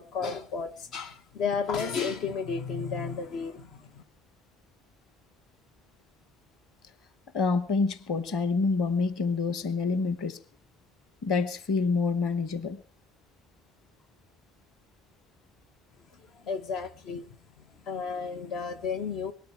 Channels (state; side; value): quieter; right; 4.3 dB